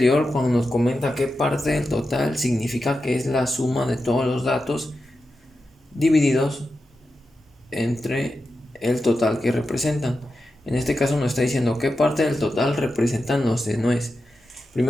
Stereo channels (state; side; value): normal; both; correlation 0.90